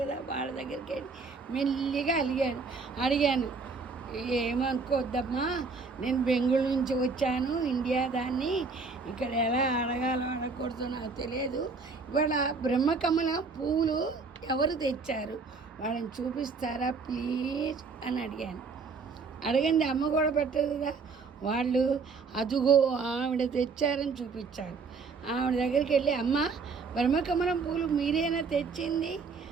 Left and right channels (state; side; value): quieter; left; 4.6 dB